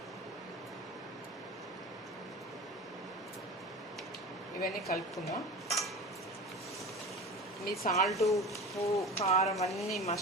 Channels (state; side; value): normal; both; correlation 0.32